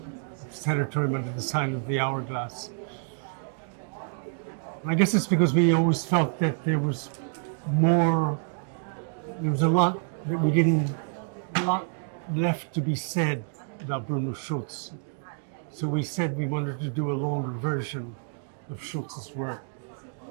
Sanatorium under the sign of the Hourglass. And I guess it's because we always felt that there was a lot that we didn't, a lot left to be said about Bruno Schulz. So we said we wanted to do a longer version of Schulz's work.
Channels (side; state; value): left; silent; 59 dB below the other